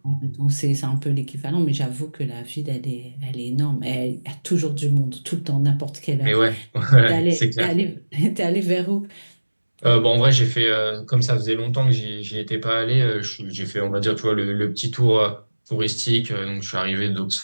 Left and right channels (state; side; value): inverted; both; correlation -1.00